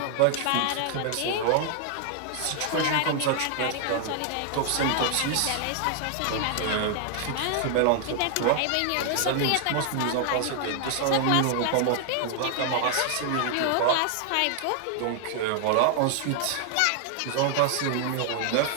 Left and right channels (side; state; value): both; different; correlation 0.00